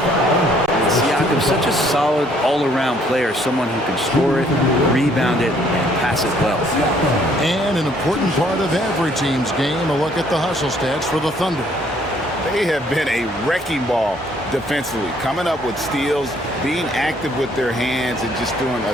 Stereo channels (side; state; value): both; normal; correlation 0.63